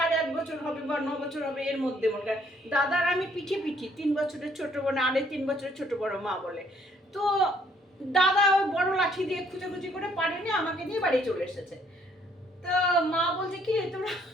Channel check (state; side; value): normal; both; correlation 0.65